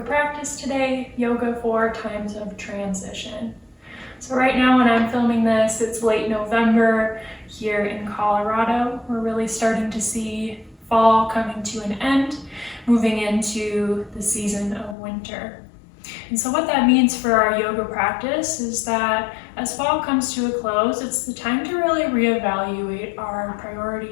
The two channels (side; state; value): right; drops out; at 15.0 s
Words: practice today, Yoga for Times of Transition. So right now when I'm filming this, it's late November here in Colorado. We're really starting to see fall coming to an end, moving into the season of winter. And so what that means for our yoga practice is that as fall comes to a close, it's the time to really reevaluate our